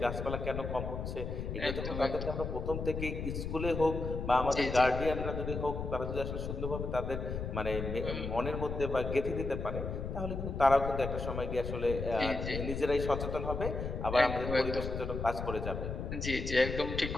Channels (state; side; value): noise; left; rumble, 4 dB below the sound